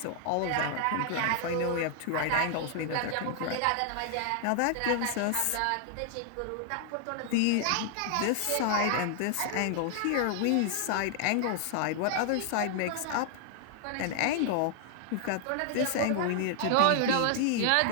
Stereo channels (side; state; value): both; different; correlation 0.00